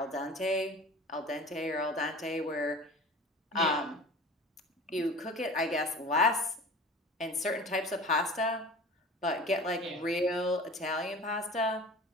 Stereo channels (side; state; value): both; normal; correlation 0.39